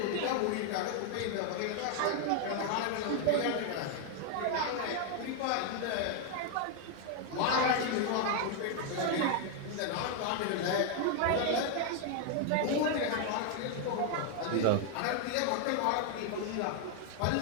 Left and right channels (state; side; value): different; both; correlation 0.00